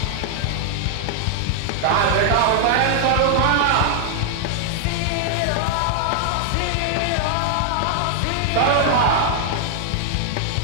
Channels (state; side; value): different; both; correlation -0.01